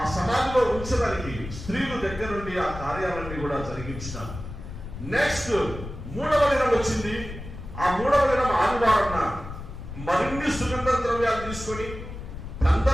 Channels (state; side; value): noise; left; rumble, 10 dB below the sound